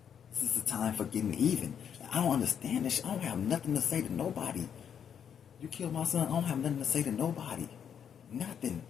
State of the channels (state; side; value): quieter; right; 8.2 dB